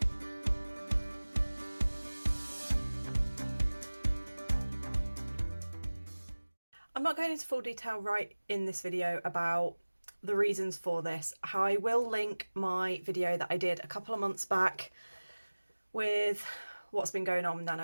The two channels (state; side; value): inverted; both; correlation -1.00